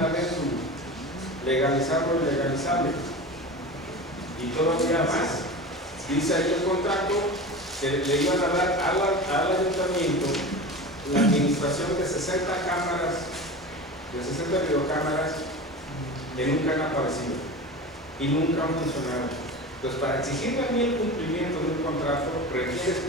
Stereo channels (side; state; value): both; normal; correlation 0.31